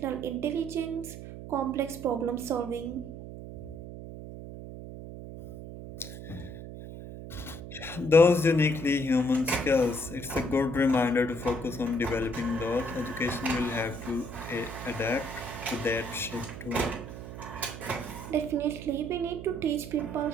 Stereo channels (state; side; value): noise; right; hum, 11 dB below the sound